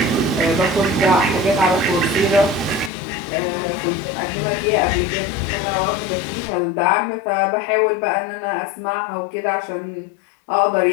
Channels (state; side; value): drops out; right; at 2.9 s